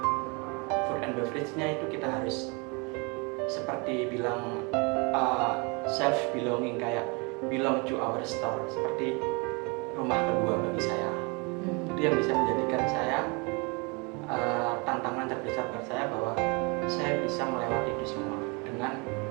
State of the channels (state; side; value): quieter; left; 30.6 dB